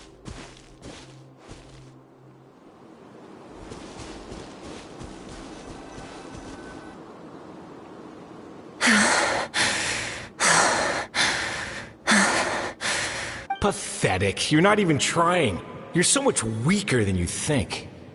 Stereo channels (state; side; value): identical; both; correlation 1.00